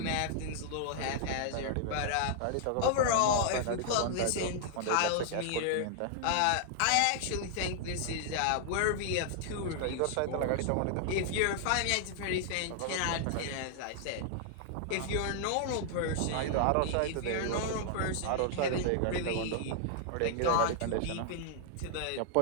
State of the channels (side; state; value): both; different; correlation -0.01